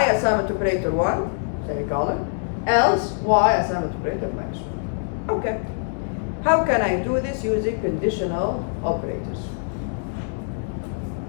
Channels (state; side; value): silent; right; digital silence